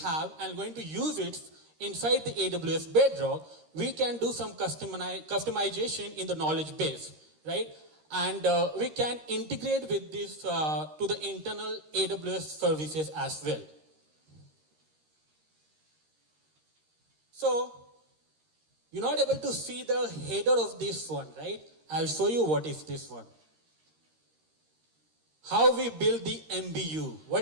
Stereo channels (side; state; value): left; late; 13 ms